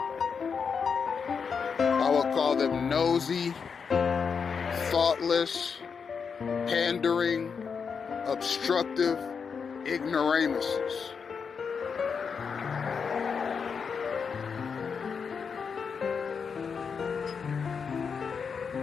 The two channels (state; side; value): quieter; right; 6.0 dB